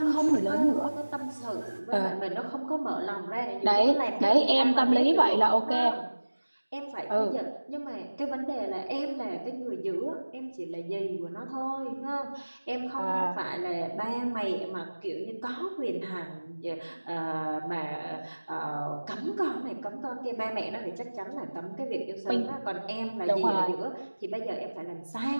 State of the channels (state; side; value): inverted; both; correlation -1.00